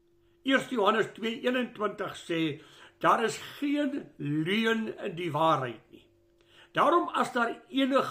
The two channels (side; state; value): both; identical; correlation 1.00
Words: 1 Johannes 2:21 sê, daar is geen leuen in die waarheid nie. Daarom as daar